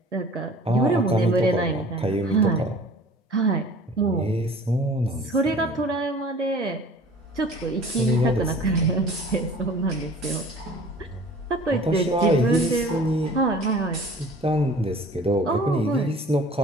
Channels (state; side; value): normal; both; correlation 0.47